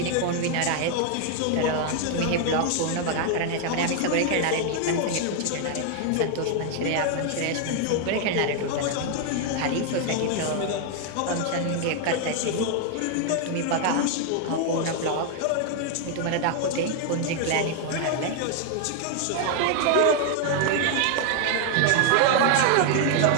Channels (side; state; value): both; different; correlation 0.00